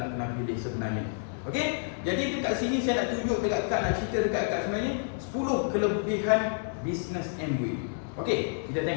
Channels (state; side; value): silent; right; digital silence